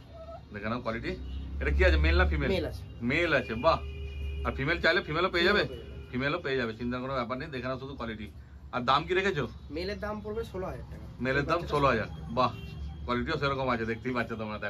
দেখে নাও কোয়ালিটি। এটা কি আছে, মেল না ফিমেল? মেল আছে। মেল আছে, বাহ। আর ফিমেল চাইলে ফিমেলও পেয়ে যাবে? ফিমেলও পেয়ে যাবে, চিন্তার কোনো ব্যাপার নেই। দেখে নাও শুধু কোয়ালিটি। আর দাম কি রেখেছো? মেলের দাম পড়বে 16000 টাকা। মেলের দাম 16000। বাহ, কোয়ালিটিও সেরকম আছে, দেখতেই পাচ্ছ তোমরা।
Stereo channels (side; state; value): both; identical; correlation 1.00